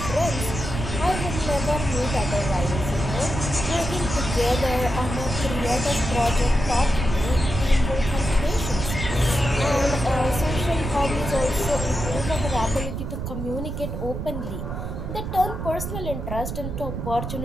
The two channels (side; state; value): right; noise; rumble, 5 dB below the sound